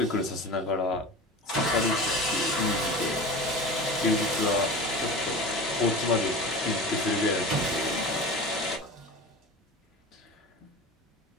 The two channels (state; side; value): normal; both; correlation 0.32